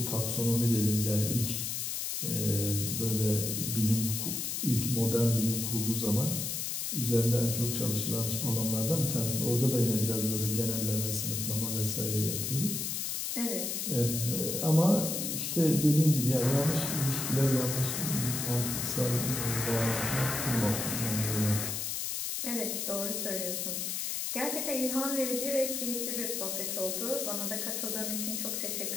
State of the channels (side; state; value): left; noise; hiss, 2 dB below the sound